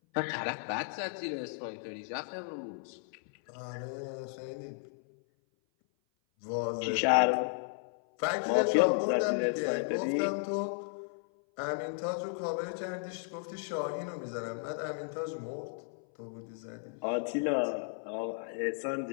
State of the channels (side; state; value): right; silent; 55 dB below the other